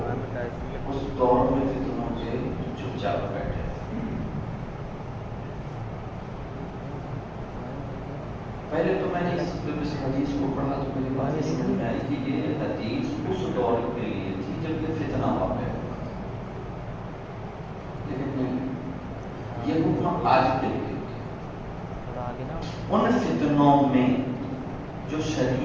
اس دور میں فتنوں سے چپ چاپ بیٹھے. پہلے تو میں نے اس حدیث کو پڑھا تو میری بات یہ سمجھ میں آئی کہ یہ حدیث اس دور کے لیے تھی جب یہ فتنہ واقع ہوا، لیکن یہ حکم آج کے لیے ان فتنوں میں جو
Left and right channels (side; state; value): both; identical; correlation 1.00